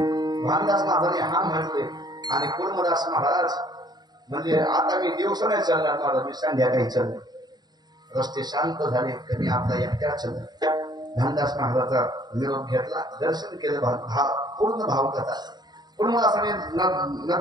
भानदास महाराजांनी, हा म्हणते. आणि कुर्मदास महाराज म्हणजे आता मी दिवस नाही चालणार मला, मी संध्याकाळी चाललो. रस्ते शांत झाले तर मी आपला एकट्या चाललो. भानदास महाराजाचा निरोप घेतला, दर्शन केलं, पूर्ण भावकथा. कुर्मदासाने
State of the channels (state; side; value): late; left; 0.20 ms